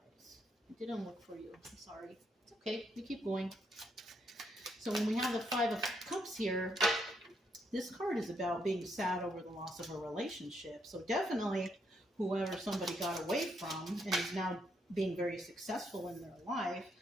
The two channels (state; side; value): normal; both; correlation 0.76